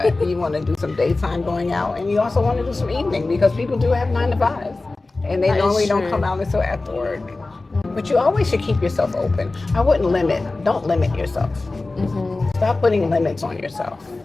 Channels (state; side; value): quieter; right; 3.3 dB